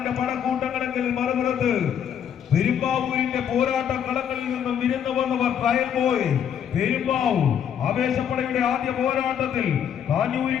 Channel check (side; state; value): right; quieter; 8.8 dB